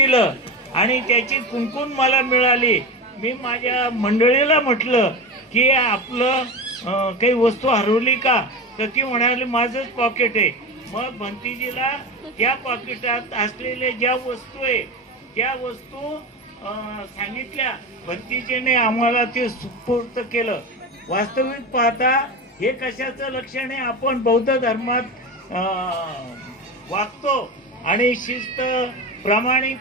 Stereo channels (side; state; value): both; normal; correlation 0.23